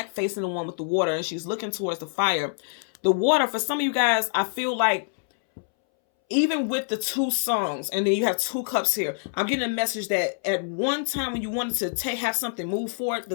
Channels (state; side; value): silent; right; 61 dB below the other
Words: facing the one with the water, and she's looking towards the fire. The water, for some of you guys, I feel like, even with the 2 songs, and then you have 2 cups here, I'm getting a message that at one time when you wanted to have something move forward,